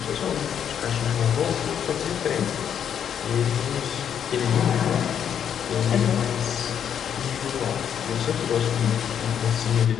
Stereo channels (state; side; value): quieter; right; 8.7 dB